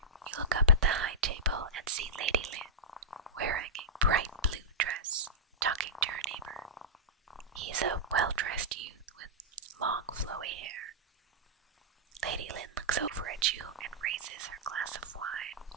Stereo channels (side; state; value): both; normal; correlation -0.11